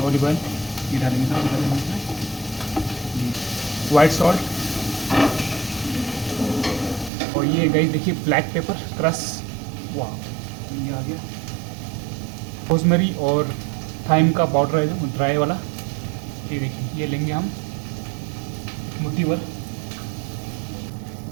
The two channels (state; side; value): drops out; left; at 7.1 s